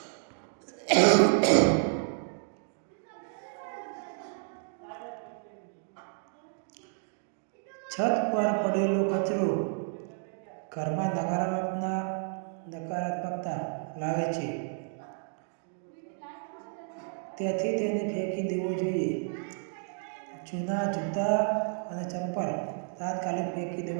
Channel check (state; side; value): silent; left; 57 dB below the other